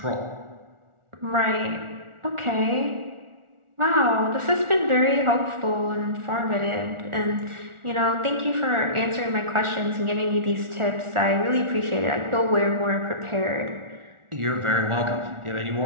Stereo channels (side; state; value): left; late; 1.4 ms